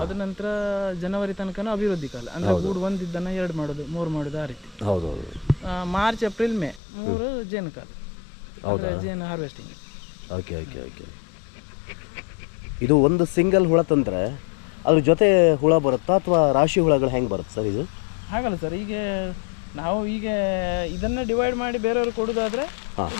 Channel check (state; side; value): drops out; right; at 6.8 s